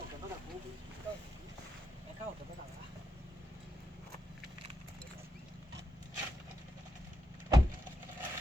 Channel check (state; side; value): normal; both; correlation 0.84